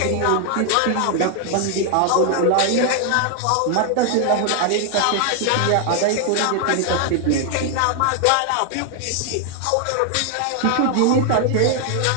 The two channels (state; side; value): different; both; correlation 0.00